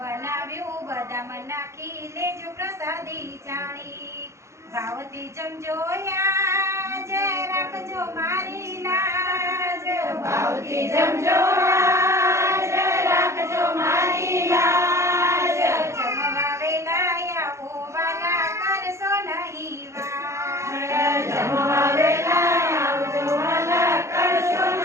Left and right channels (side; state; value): left; late; 0.14 ms